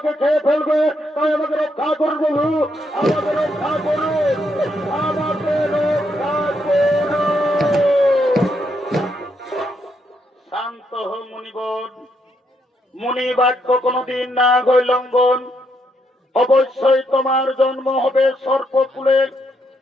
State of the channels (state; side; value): normal; both; correlation 0.77